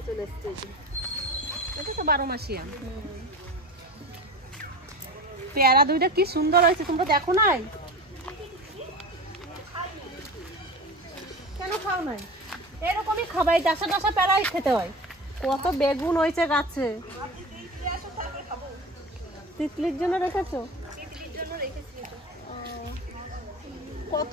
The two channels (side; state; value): both; normal; correlation 0.31